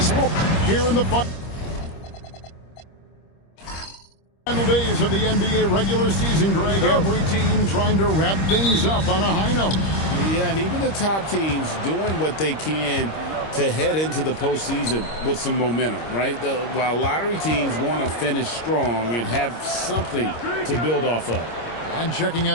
Sports here in the final days of the NBA regular season, Greg. Every team trying to wrap things up on a high note. Yeah, and even the top teams doing what they can to head into the postseason with some momentum, right? While lottery teams want to finish strong and have something to build off of. And checking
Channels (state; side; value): late; right; 26 ms